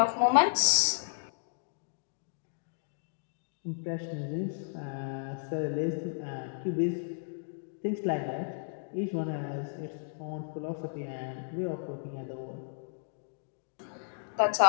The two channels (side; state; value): right; silent; digital silence